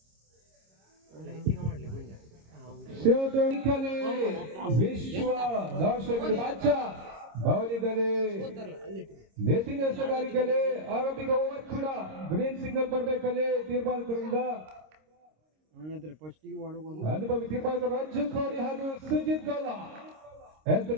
ಕ್ಷೇತ್ರಕಲೆ ವಿಶ್ವ ದರ್ಶಕರ ಬಾಚ ಬೌಲಿಗಲೆ ನೆತಿನ ಎಸೆಗಾರಿಕೆಲೆ ಆರಂಭಿಕ ಓವರ್ ಕೂಡ ಗ್ರೀನ್ ಸಿಗ್ನಲ್ ಬರಬೇಕಲ್ಲಿ ತೀರ್ಮಾನಿಕರಿಂದ ಅನುಭವಿ ತೀರ್ಮಾನಿಕ ರಂಜು ಕೋಡಿ ಹಾಗೂ ಸುಜಿತ್ ಗೋಲ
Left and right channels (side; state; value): left; late; 26 ms